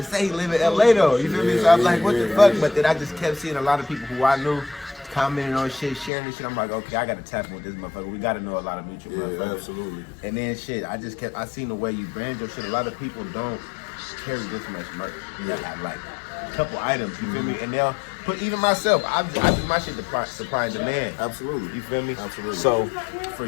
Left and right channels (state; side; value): drops out; right; at 6.1 s